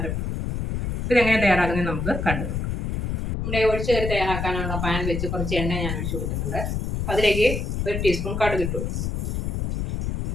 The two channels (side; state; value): left; noise; rumble, 1 dB below the sound